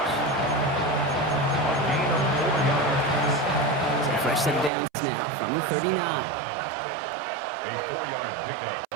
So fresh set of downs now from the 39. A 4-yard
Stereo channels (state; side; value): drops out; left; at 4.7 s